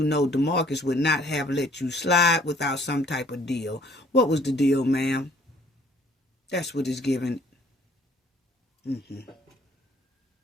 know DeMarcus would not have let you slide without some type of deal. What was the deal, ma'am? That's what it's given.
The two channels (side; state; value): both; normal; correlation 0.58